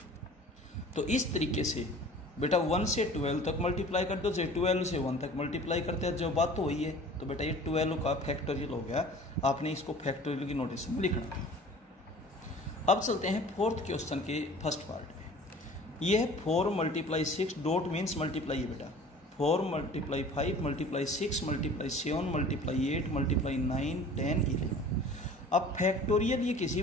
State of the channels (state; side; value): normal; both; correlation 0.45